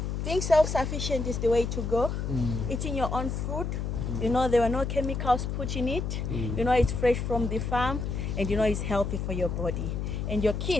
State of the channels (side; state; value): left; noise; hum, 2 dB below the sound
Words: Being self-sufficient is the way to go. Eating your own food. You know, there were no chemicals put in it. You know, it's fresh from the farm, and you know it's healthy for your body. And your